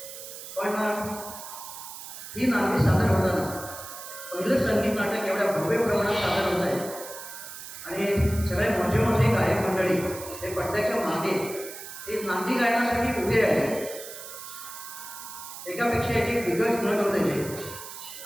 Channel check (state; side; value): noise; right; hiss, 12 dB below the sound